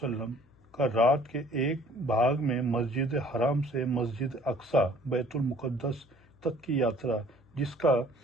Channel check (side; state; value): left; noise; hum, 29 dB below the sound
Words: کا رات کے ایک بھاگ میں مسجد حرام سے مسجد اقصی بیت المقدس تک کی یاترا، جس کا